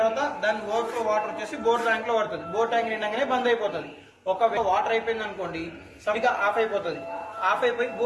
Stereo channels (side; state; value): both; identical; correlation 1.00